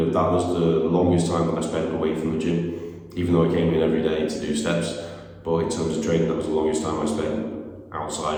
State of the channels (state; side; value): identical; both; correlation 1.00